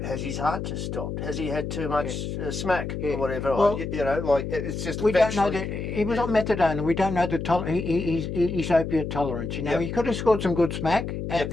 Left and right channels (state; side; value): noise; left; hum, 5 dB below the sound